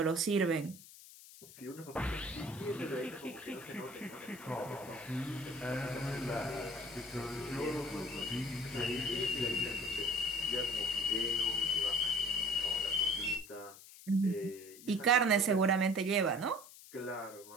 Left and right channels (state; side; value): noise; left; hiss, 18 dB below the sound